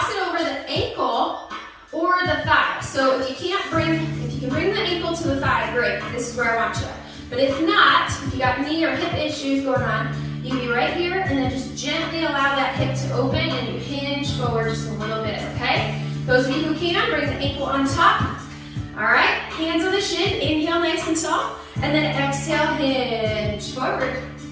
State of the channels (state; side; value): identical; both; correlation 1.00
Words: it over the ankle or the thigh. So if you can bring the ankle to the thigh, great. This is where I want you. But if not, if you got knee or hip issues going on, you can be right here and then just gently allow that hip to open and you hinge forward just a little bit, okay? Those of you who can, bring the ankle on top. All right, hands on the shin, inhale nice and tall, and then exhale, hinge forward.